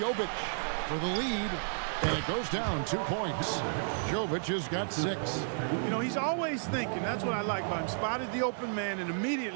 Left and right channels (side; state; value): left; silent; 56 dB below the other